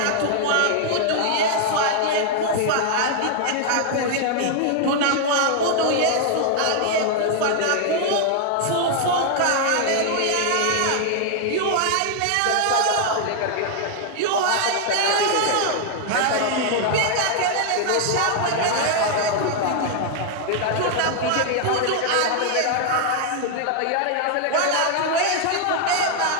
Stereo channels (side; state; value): both; different; correlation 0.00